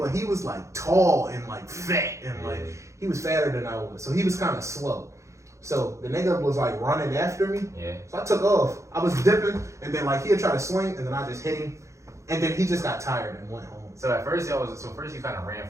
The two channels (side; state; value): left; late; 0.15 ms